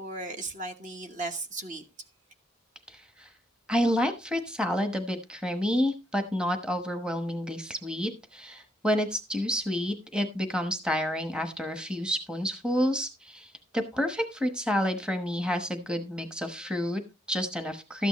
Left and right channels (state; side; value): normal; both; correlation 0.76